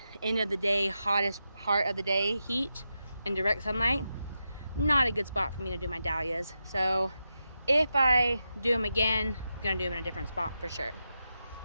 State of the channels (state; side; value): inverted; both; correlation -0.88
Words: end of the day, hottest part of the day heat and direct sunlight. Not a good spot for me to do my dahlias. So if I do them again, I'm gonna do them in a different spot for sure.